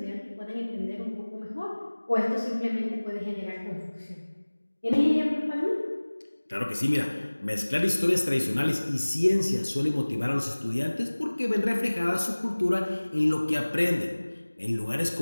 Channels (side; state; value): both; inverted; correlation -1.00